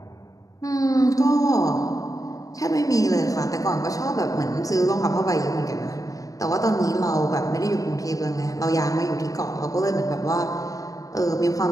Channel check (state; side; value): late; right; 0.17 ms